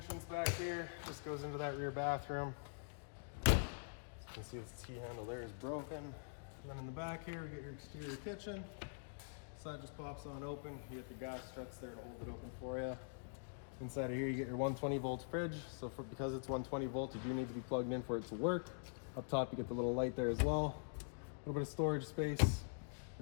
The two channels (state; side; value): silent; right; digital silence